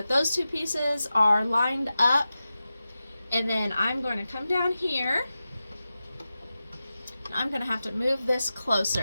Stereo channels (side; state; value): both; inverted; correlation -0.93